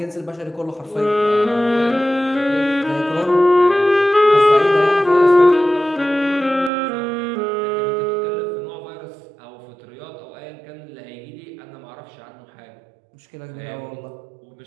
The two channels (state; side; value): drops out; left; at 6.7 s